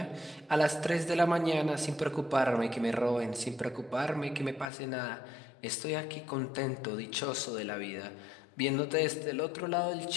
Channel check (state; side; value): drops out; right; at 4.7 s